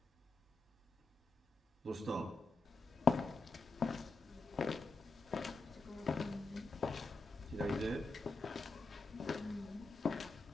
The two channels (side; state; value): right; quieter; 3.5 dB